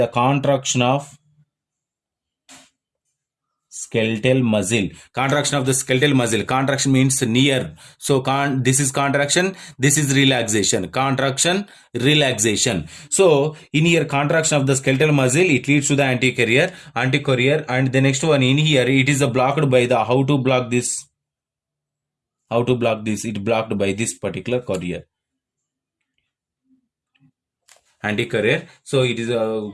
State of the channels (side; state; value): both; identical; correlation 1.00